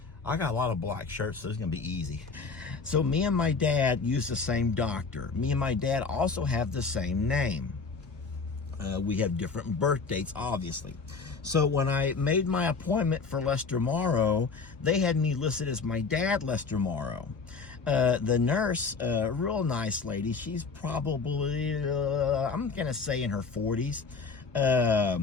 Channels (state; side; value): quieter; right; 4.7 dB